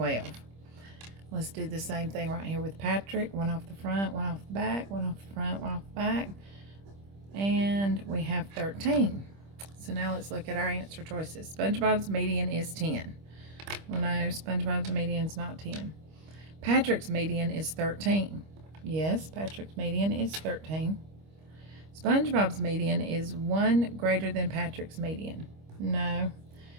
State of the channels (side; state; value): left; late; 25 ms